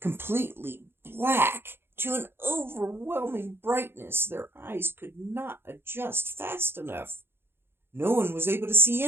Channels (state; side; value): late; left; 0.11 ms